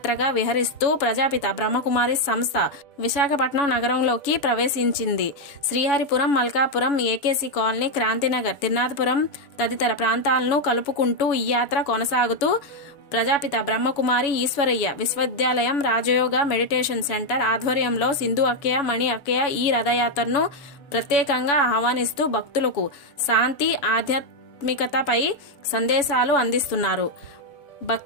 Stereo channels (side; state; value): right; late; 7.0 ms